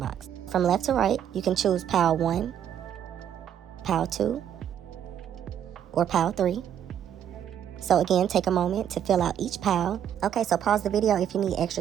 box. From left to right, you can choose pile 1, pile 2, or pile 3. So again, take a moment to fill out each pile. Okay, so pause the video if you need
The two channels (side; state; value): left; quieter; 9.7 dB